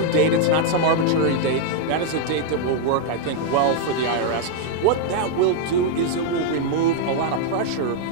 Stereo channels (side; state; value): both; different; correlation 0.00